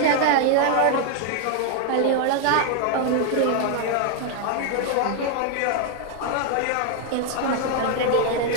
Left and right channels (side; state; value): both; different; correlation 0.00